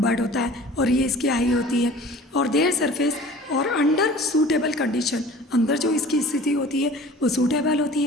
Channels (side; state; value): both; normal; correlation 0.44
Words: होता है और ये इसकी आई होती है. और देयर सरफेस और अंडर सूटेबल कंडीशन, अंदर जो इसकी स्थिति होती है वो सूटेबल होती